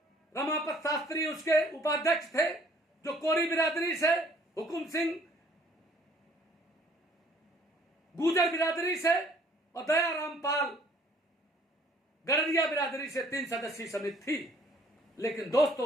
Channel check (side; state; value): both; normal; correlation 0.59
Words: रमापत शास्त्री उसके उपाध्यक्ष थे, जो कोरी बिरादरी से, हुकुम सिंह गुजर बिरादरी से और दयाराम पाल गडरिया बिरादरी से 3 सदस्यीय समिति थी। लेकिन दोस्तों,